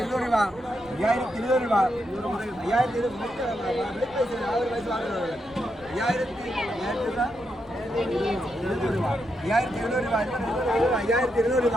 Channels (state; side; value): noise; right; rumble, 25 dB below the sound